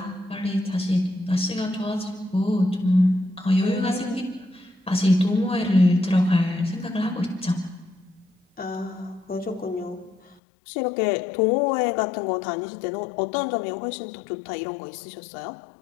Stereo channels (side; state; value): right; drops out; at 10.4 s